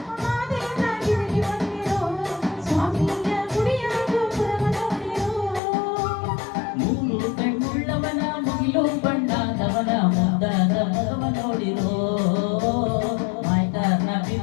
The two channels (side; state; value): right; drops out; at 5.6 s